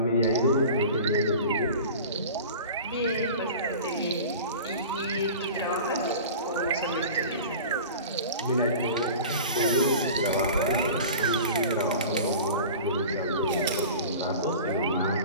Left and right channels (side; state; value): both; inverted; correlation -0.37